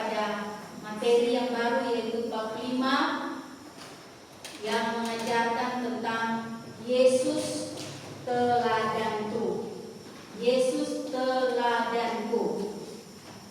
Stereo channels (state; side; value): identical; both; correlation 1.00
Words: materi yang baru, yaitu bab 5 yang mengajarkan tentang Yesus teladanku. Yesus teladanku.